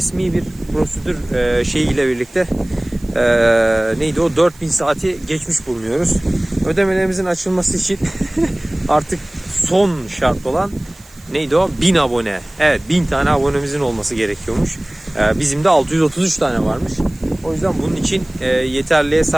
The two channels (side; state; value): right; noise; hiss, 25 dB below the sound